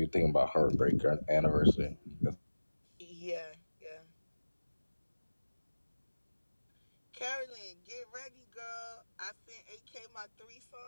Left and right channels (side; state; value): both; inverted; correlation -1.00